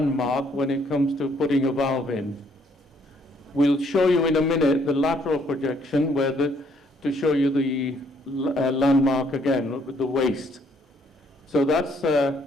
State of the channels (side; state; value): both; normal; correlation 0.67